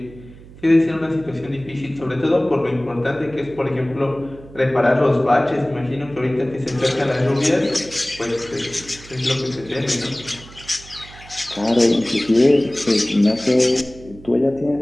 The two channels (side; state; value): right; noise; hum, 19 dB below the sound